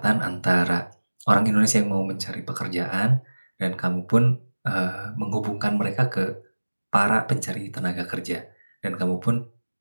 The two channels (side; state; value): both; inverted; correlation -1.00